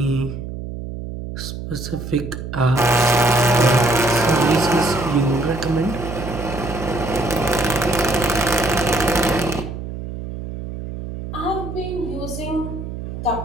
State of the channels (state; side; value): noise; right; hum, 8 dB below the sound